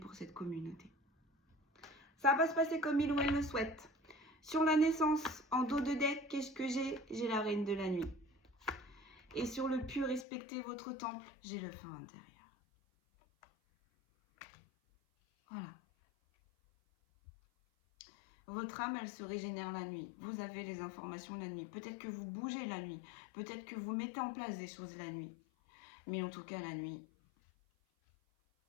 cette communauté. Ça va se passer comme il ou elle le souhaite. Sur la naissance, en dos de deck, qu'est-ce que j'ai? J'ai la reine de la nuit. Et sur le pur, respectez votre temple, j'ai le feu intérieur. Voilà. Votre âme, elle se régénère la nuit. Vous avez les informations la nuit. Peut-être que vous bougez la nuit. Peut-être que vous mettez en place des choses la nuit. Mais en tout cas, la nuit,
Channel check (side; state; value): right; drops out; at 10.2 s